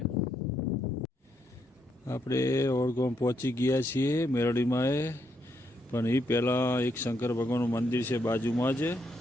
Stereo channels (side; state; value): both; normal; correlation 0.77